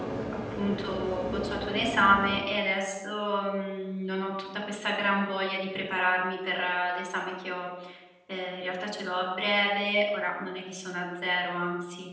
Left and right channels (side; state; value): both; identical; correlation 1.00